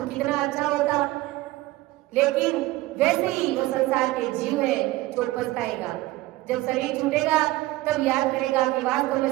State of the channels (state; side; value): quieter; left; 18.5 dB